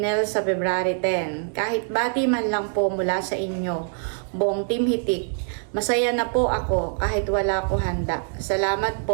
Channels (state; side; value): silent; left; 63 dB below the other